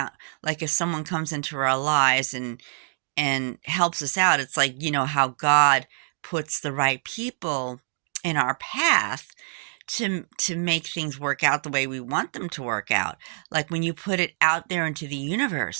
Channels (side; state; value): left; silent; digital silence